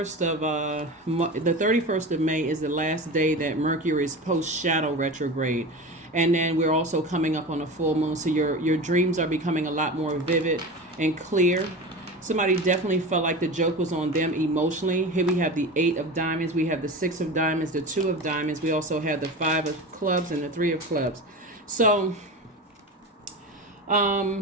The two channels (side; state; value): both; normal; correlation 0.29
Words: of May is the last day that Mercury is post-shadow retrograde. And then we're also coming up on a full moon. So your dreams are becoming a lot more vivid and clear. Somebody definitely felt like the joke was on them emotionally. Here we have the 8 of diamonds. We have the 6 of diamonds, the 2 of diamonds. We also have the 5 of clubs and the 3 of clubs. So